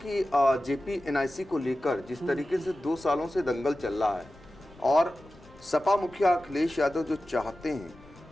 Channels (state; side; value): noise; left; rumble, 23 dB below the sound